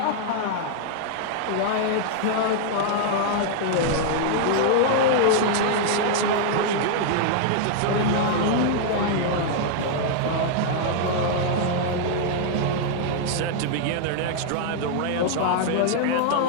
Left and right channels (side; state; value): both; different; correlation -0.01